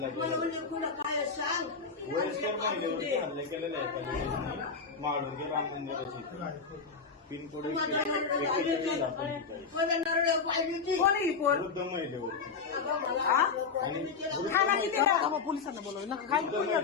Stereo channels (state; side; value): quieter; right; 5.2 dB